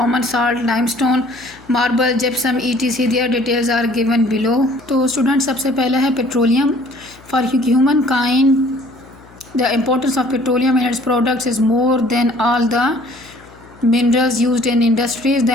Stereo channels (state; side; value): noise; left; hum, 25 dB below the sound